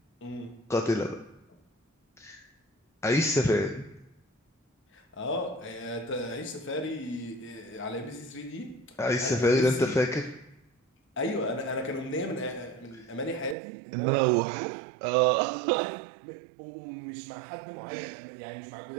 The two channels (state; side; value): drops out; left; at 13.6 s